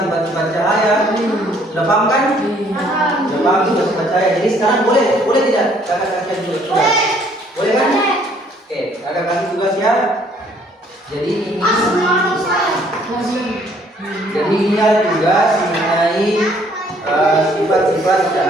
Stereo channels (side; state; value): both; normal; correlation 0.62